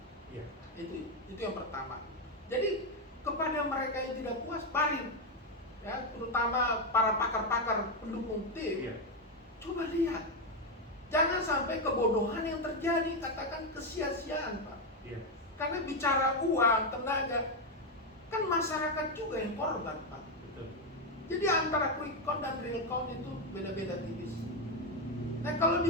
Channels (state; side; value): normal; both; correlation 0.07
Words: Itu yang pertama. Jadi kepada mereka yang tidak puas, mari ya, terutama para pakar-pakar pendukung tim, coba lihat, jangan sampai kebodohan yang terjadi, katakan kesia-siaan, Pak. Karena bicara uang, tenaga, kan masyarakat juga yang korban, Pak. Jadi antara quick count dan real count itu beda-beda tipis. Nah kalau